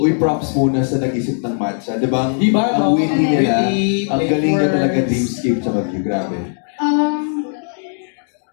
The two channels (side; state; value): right; silent; digital silence